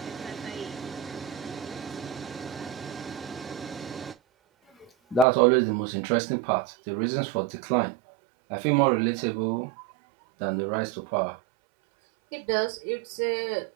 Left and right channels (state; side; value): drops out; left; at 5.2 s